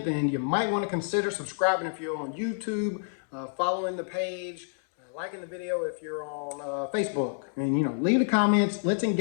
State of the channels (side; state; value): right; silent; digital silence